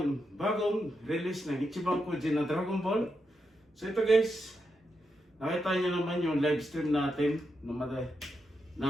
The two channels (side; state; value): both; normal; correlation 0.85